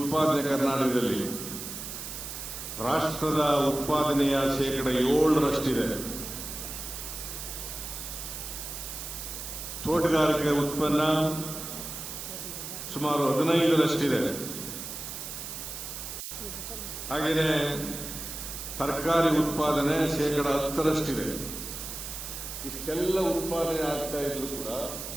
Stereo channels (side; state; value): right; noise; hiss, 8 dB below the sound